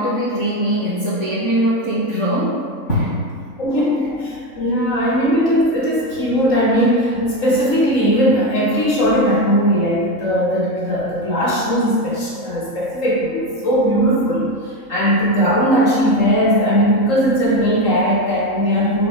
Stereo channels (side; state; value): right; late; 3.8 ms